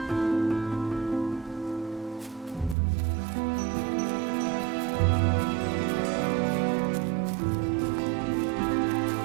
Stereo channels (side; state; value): left; drops out; at 2.8 s